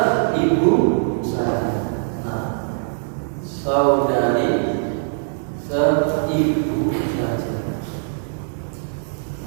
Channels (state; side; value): silent; left; digital silence